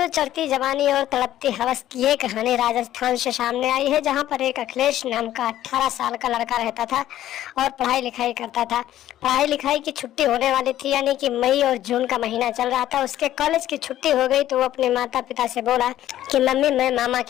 चढ़ती जवानी और तड़पती हवस की ये कहानी राजस्थान से सामने आई है, जहां पर एक अखिलेश नाम का 18 साल का लड़का रहता था और पढ़ाई लिखाई करता था। पढ़ाई लिखाई की छुट्टी होने वाली थी, यानी कि मई और जून का महीना चल रहा था। उसके कॉलेज की छुट्टी हो गई तो वो अपने माता पिता से बोला कि मम्मी, मैं मामा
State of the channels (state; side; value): quieter; right; 12.9 dB